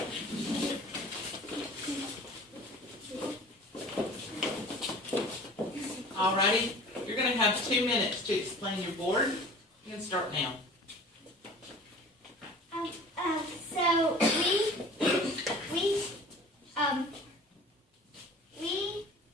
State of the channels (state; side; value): normal; both; correlation 0.43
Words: Alrighty, you're gonna have 2 minutes to explain your board. You can start now. So